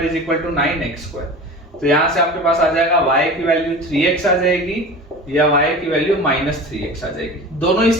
is equal to 9x square. तो यहां से आपके पास आ जाएगा y की वैल्यू 3x आ जाएगी या y की वैल्यू -3x आ जाएगी। दोनों ही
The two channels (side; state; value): both; normal; correlation 0.35